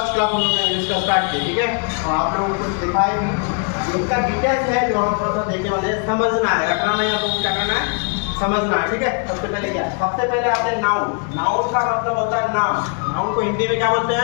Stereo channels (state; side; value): quieter; right; 37.3 dB